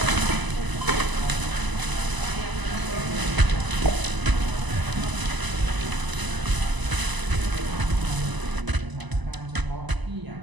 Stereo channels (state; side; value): late; left; 1.0 ms